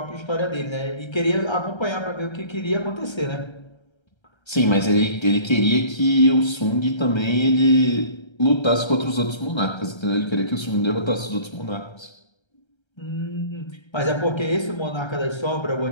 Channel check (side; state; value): right; late; 1.3 ms